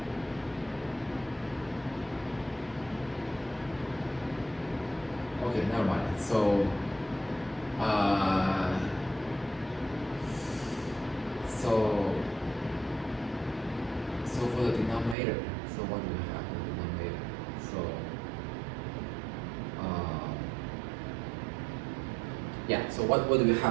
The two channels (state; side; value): drops out; left; at 15.2 s